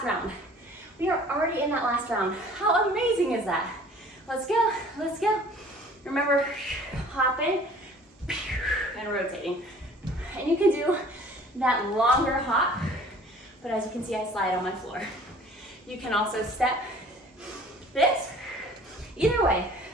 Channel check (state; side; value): normal; both; correlation 0.50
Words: round. We are already in that last round. How amazing is that? Let's go, let's go. Remember, hopping and rotating. And you can do that longer hop, but as you can see, I slide on my floor. You can also step this. Either way,